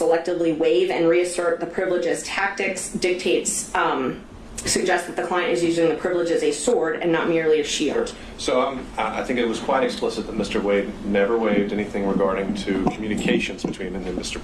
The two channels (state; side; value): identical; both; correlation 1.00